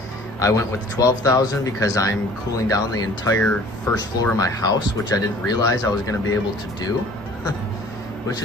I went with the 12,000 because I'm cooling down the entire first floor of my house, which I didn't realize I was going to be able to do. Which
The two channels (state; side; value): normal; both; correlation 0.50